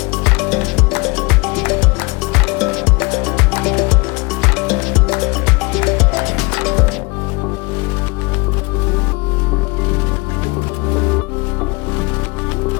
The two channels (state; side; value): quieter; right; 27.1 dB